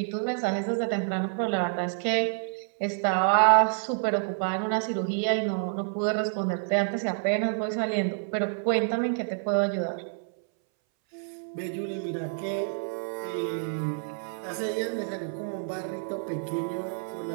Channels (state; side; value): silent; left; 59 dB below the other